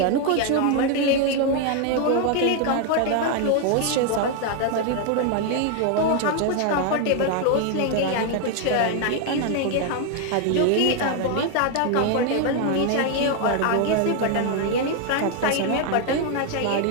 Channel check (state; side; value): different; both; correlation 0.01